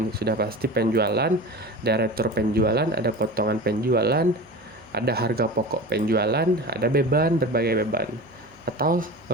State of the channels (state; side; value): noise; right; hum, 29 dB below the sound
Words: Sudah pasti penjualan, ada retur penjualan, ada potongan penjualan, ada harga pokok penjualan, ada beban, berbagai beban. Atau